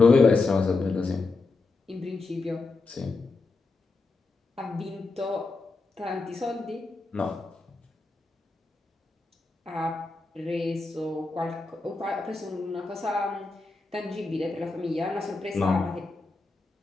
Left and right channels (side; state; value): right; quieter; 3.7 dB